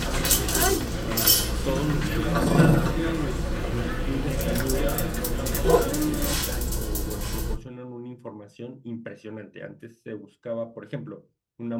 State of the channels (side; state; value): both; identical; correlation 1.00